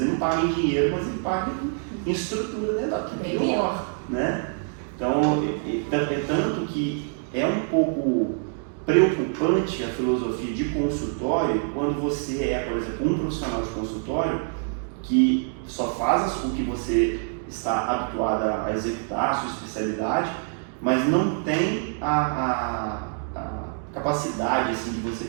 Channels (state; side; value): silent; left; 61 dB below the other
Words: ele não paga em dinheiro, mas ele paga em estrutura dental, que é pior, né? Então, é tanto que é um pouco preocupante a filosofia de consultório quando você é, por exemplo, um profissional de consultório que só faz o que você está habituado a executar, a sua especialidade, mas não tem a capacidade assim, de você